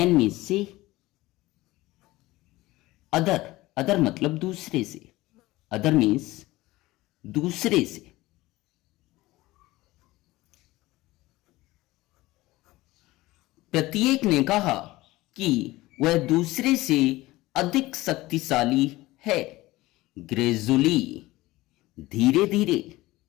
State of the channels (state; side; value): quieter; right; 18.8 dB